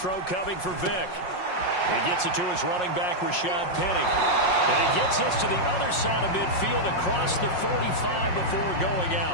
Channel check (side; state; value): right; late; 5.5 ms